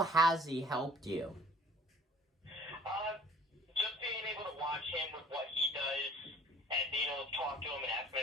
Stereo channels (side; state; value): both; normal; correlation 0.51